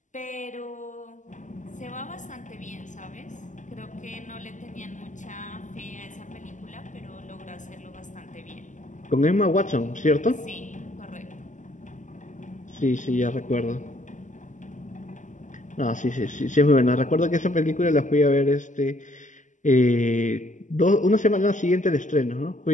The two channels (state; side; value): late; right; 0.37 ms